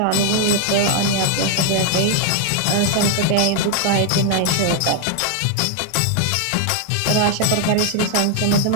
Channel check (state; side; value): different; both; correlation 0.00